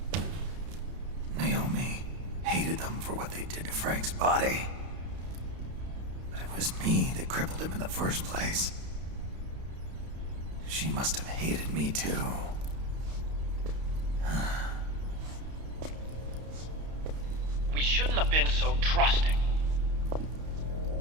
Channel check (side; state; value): left; late; 32 ms